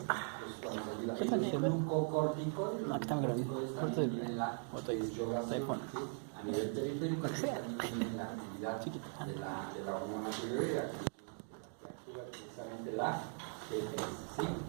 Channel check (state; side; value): silent; left; 51 dB below the other